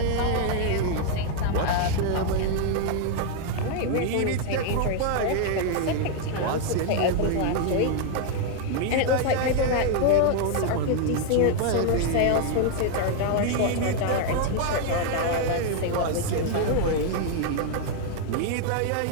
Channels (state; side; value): different; both; correlation 0.00